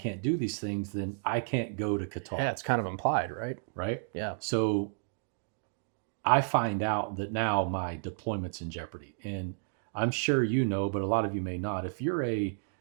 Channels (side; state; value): left; silent; digital silence